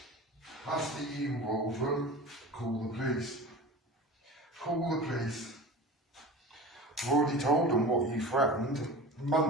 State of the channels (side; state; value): both; normal; correlation 0.35